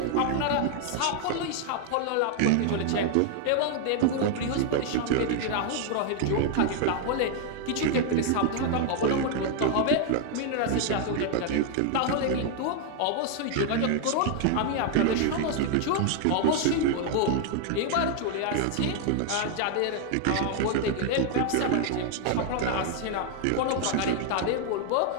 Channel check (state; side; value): different; both; correlation 0.00